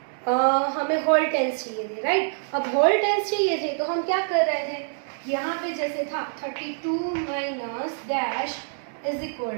हमें होल टेंस चाहिए थे राइट. अब होल टेंस चाहिए थे तो हम क्या कर रहे थे? यहाँ पे जैसे था 32 minus dash is equal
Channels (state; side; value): silent; left; digital silence